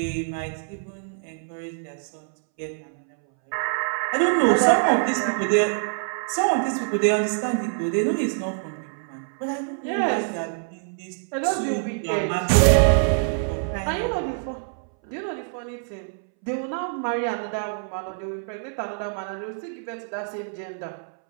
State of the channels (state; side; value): silent; left; 62 dB below the other